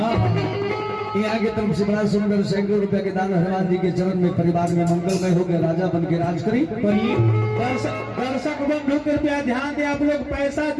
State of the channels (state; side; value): identical; both; correlation 1.00